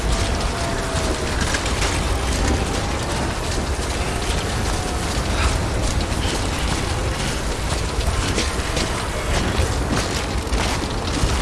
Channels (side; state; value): both; identical; correlation 1.00